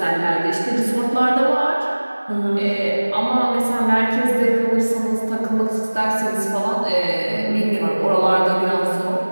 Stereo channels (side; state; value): both; inverted; correlation -1.00